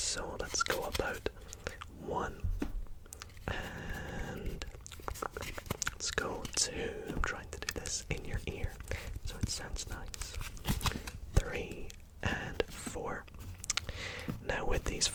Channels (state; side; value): identical; both; correlation 1.00